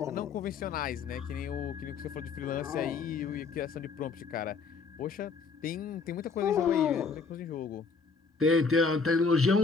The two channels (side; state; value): right; quieter; 4.9 dB